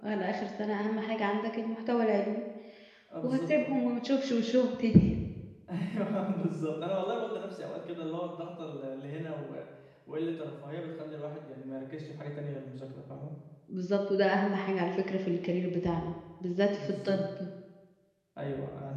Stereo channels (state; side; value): identical; both; correlation 1.00